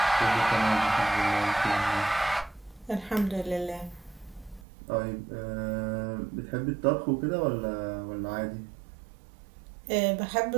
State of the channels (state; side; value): drops out; left; at 4.7 s